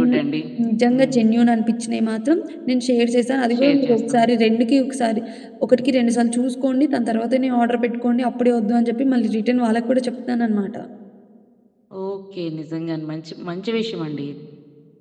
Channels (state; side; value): identical; both; correlation 1.00